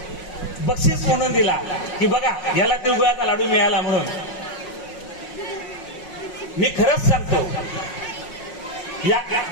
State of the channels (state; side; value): late; right; 5.5 ms